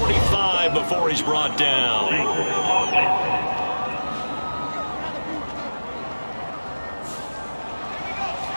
before he's brought down.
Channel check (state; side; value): inverted; both; correlation -1.00